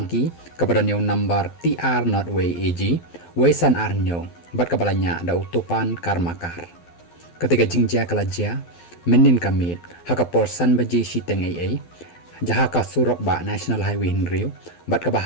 ka badan nyo number TR not way AG, way san R nyo, bat kabalanya da utupan karmakar. Ketika jingja kalajia, menin kamit, hakapor san baji siteng AA, jaha ka surok ba National Highway Hinriu, bat ka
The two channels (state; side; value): late; right; 12 ms